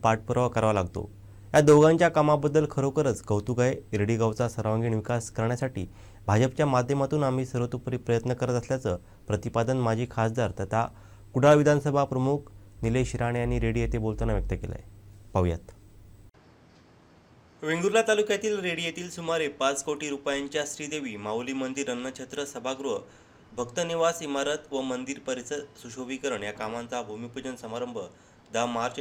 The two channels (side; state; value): both; identical; correlation 1.00